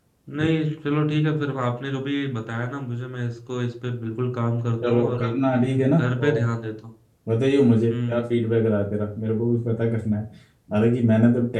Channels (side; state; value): both; identical; correlation 1.00